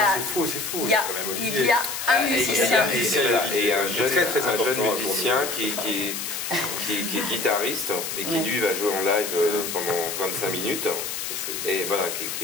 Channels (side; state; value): left; noise; hiss, 4 dB below the sound